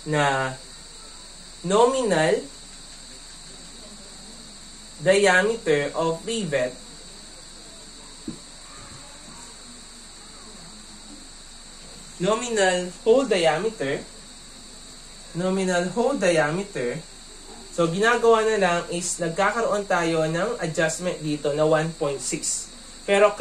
na nominal diameter of rivet nominal hole diameter, so ginagawa na lang is nagkakaroon tayo ng adjustment dito na 1.6. Pero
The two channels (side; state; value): both; identical; correlation 1.00